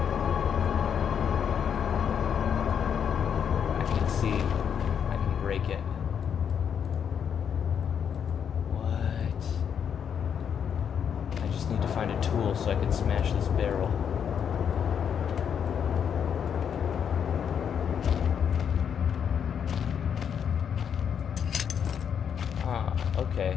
I can see. I can break it. What? I just need to find a tool so I can smash this barrel. Ah, okay.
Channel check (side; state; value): right; quieter; 7.9 dB